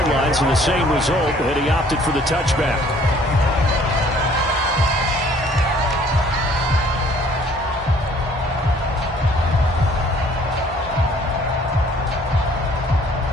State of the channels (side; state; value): both; normal; correlation 0.57